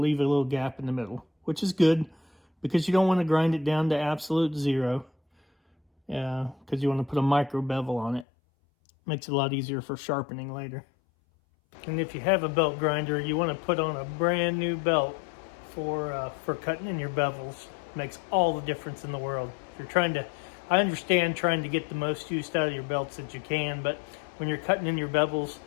a little gap in the middle, which is good because you don't want to grind it down to absolute 0. Because you want to put a micro bevel on it. Makes it a lot easier for sharpening later. And if you have a belt grinder, you want to put on a brand new belt for cutting in your bevels. Makes all the difference in the world. If you're trying to, I understand trying to get the most use out of your belts that you can, but when you're cutting in your bevels,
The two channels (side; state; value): right; drops out; at 8.2 s